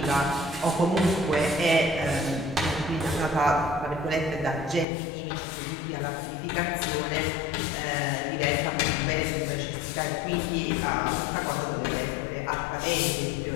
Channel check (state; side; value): drops out; right; at 4.9 s